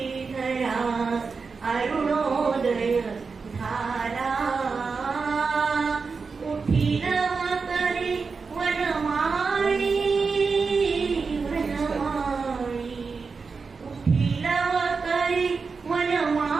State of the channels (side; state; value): left; quieter; 4.8 dB